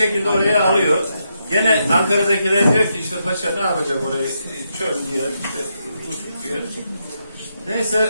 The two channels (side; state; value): both; inverted; correlation -0.82